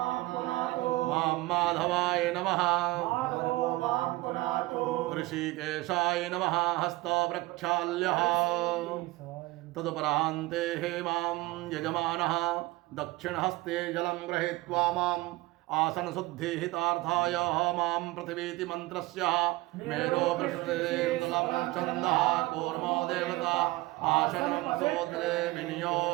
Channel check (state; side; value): quieter; left; 20.4 dB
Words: मां माधवाय नमः। ऋषिकेशाय नमः हस्तो प्रक्षाल्यः। तदुपरान्ते मां यजमानः दक्षिणहस्ते जलं गृहीत्वा माम् आसनशुद्धिहितार्थाय मां पृथिवीति मन्त्रस्य मेरो पृष्ठेन्दुलं छन्दः कूर्मो देवता आसनं सोदरे